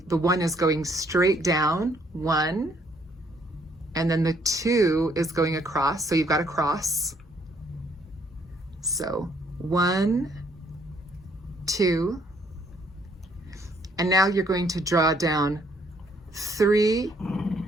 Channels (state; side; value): normal; both; correlation 0.66